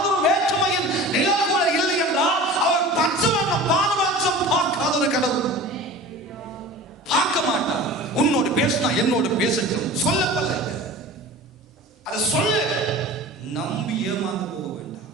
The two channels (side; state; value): both; normal; correlation 0.38